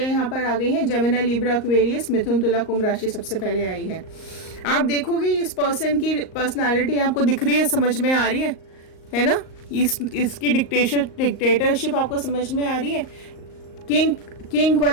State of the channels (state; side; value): late; right; 38 ms